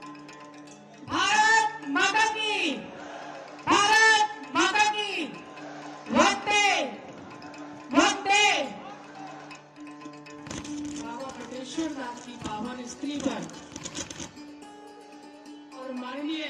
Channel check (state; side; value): identical; both; correlation 1.00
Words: भारत माता की, भारत माता की, वंदे वंदे। बाबा बटेश्वर दास की पावन स्त्री पर और माननीय